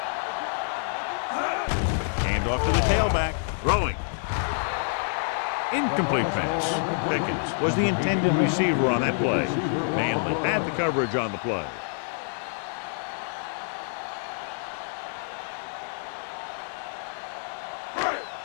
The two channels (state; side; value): silent; right; digital silence